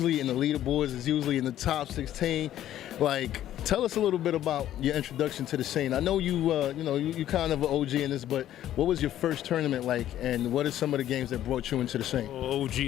in the leaderboards, it's usually in the top 16. Like, tell us a little bit about your introduction to the scene. I know you kind of an OG in this, but what was your first tournament like, and what are some of the games that brought you into the scene? Oh,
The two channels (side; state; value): right; quieter; 12.2 dB